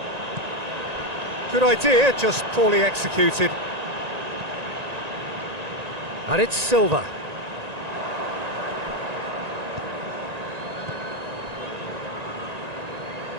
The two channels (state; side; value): late; left; 1.9 ms